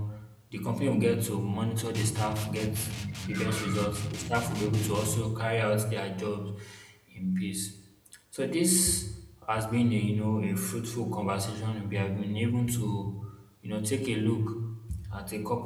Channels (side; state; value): both; identical; correlation 1.00